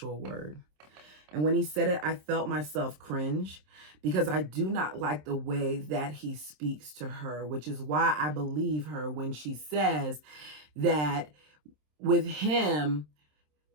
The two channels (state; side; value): late; left; 27 ms